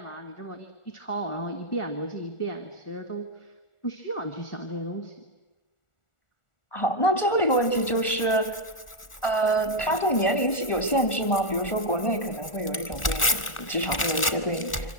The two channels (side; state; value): right; late; 1.4 ms